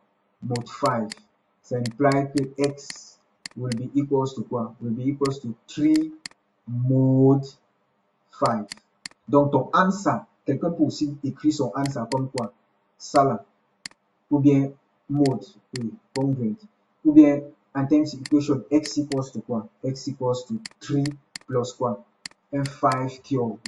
Mode 5. Ça implique que x will be equals to quoi? Will be equals to 3 mode 5. Donc ton answer, quelqu'un peut aussi écrire son answer comme quoi? Ça là. Ou bien mode, oui, congruent. Ou bien Intense equation, x equals to quoi? X equals to 3 plus quoi? Un 5 cube,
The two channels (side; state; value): both; identical; correlation 1.00